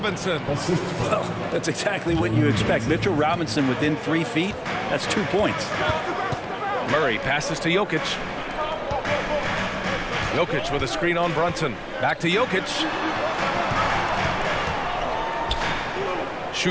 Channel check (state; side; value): identical; both; correlation 1.00